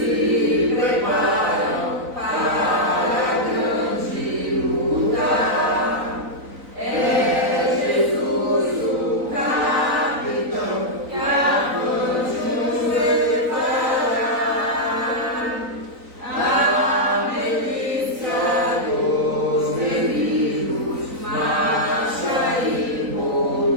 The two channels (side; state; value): left; late; 3.9 ms